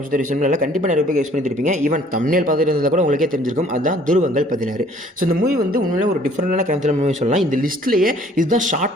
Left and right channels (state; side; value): normal; both; correlation 0.57